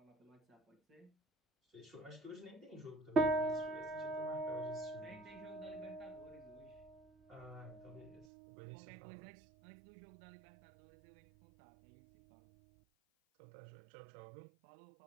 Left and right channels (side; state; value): left; drops out; at 8.2 s